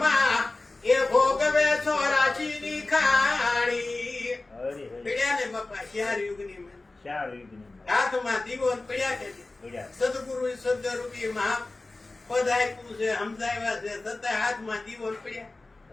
એ ભોગવે 84ની ખાણી. હરે હરે પડ્યા ને બાપા 4 યુગની માં. 4 યુગની હાથમાં દીવો ને પડ્યા કે નહીં? પડ્યા સદગુરુ સદરૂપી મહા પદ આપ્યું છે, સમજાવ્યા છે, છતાં હાથમાં દીવો ને પડ્યા.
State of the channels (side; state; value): right; quieter; 3.2 dB